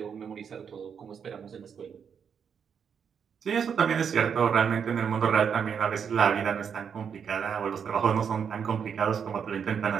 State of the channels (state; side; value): quieter; left; 7.1 dB